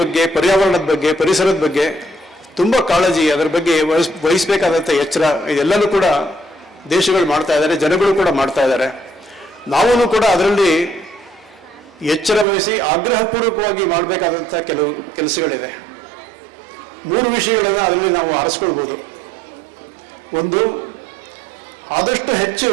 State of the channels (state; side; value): drops out; left; at 12.5 s